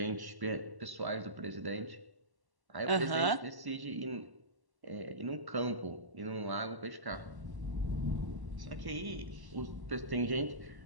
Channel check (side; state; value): left; late; 1.1 ms